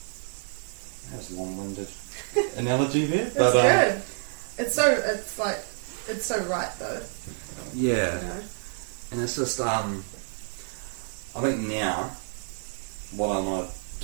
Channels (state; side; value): silent; left; 59 dB below the other